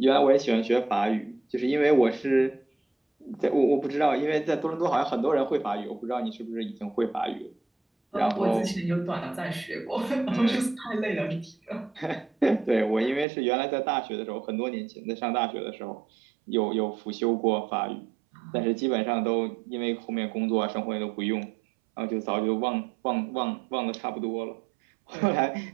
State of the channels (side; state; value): left; drops out; at 13.2 s